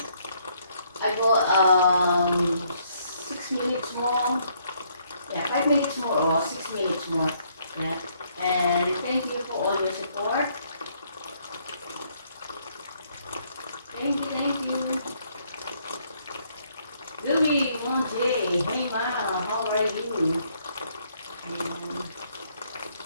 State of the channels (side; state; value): both; inverted; correlation -0.69